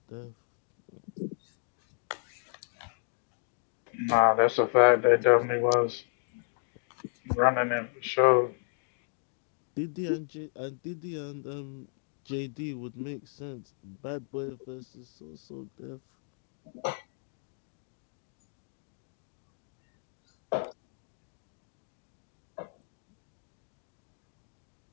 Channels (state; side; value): silent; right; digital silence